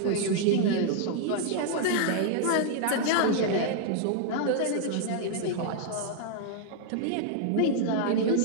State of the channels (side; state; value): both; different; correlation -0.01